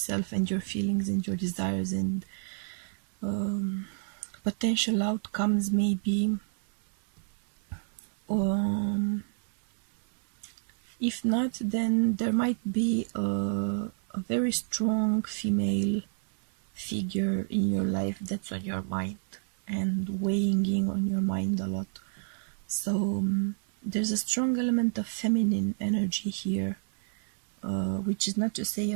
and your feelings and your desires and potential outcomes, maybe. If not, then there might be a very strong female figure in your life that's on your mind and weighing in on your mind a lot. So there's a strong element of feminine energy here, which is not to say a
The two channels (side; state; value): left; silent; 58 dB below the other